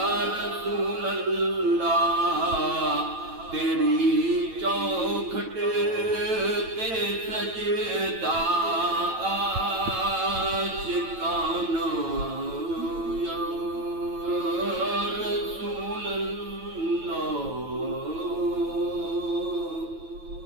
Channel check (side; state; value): left; late; 9.1 ms